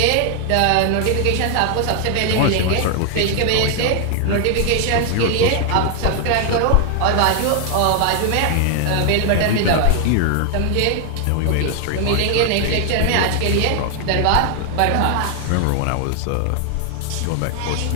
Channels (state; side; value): different; both; correlation 0.00